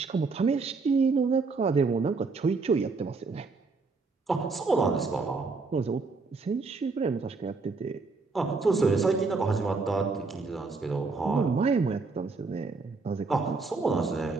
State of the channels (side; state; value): left; quieter; 4.1 dB